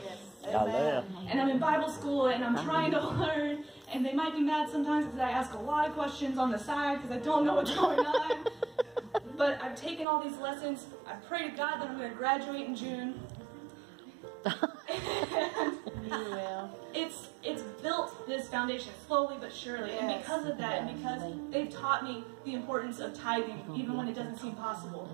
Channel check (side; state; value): left; drops out; at 10.1 s